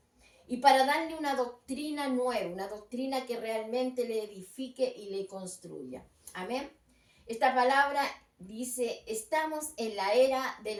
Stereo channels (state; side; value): identical; both; correlation 1.00